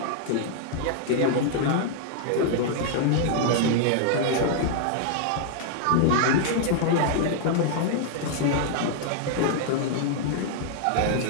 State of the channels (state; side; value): different; both; correlation -0.01